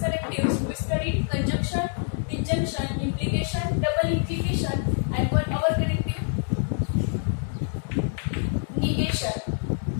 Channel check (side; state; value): right; silent; 61 dB below the other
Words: we studied conjunction, disjunction, implication, double implication, and one our connective negation.